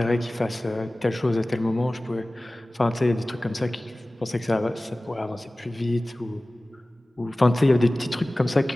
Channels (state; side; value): normal; both; correlation 0.98